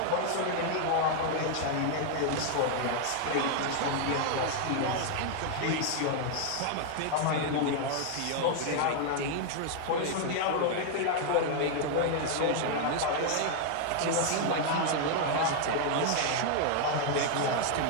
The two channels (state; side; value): different; both; correlation 0.00